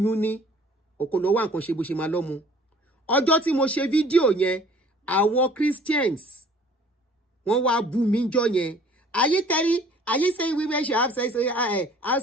ní ọkọ lọ wá nǹkan ṣe bó ṣe máa lọ́mú ọjọ́ tí mo ṣe fídíò yẹn àwọn Christians wọ́n wá bú mi jọ yẹn are you saying women should have sex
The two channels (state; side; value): normal; both; correlation 0.52